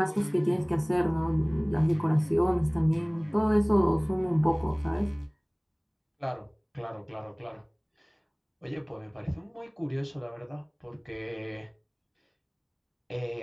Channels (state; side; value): identical; both; correlation 1.00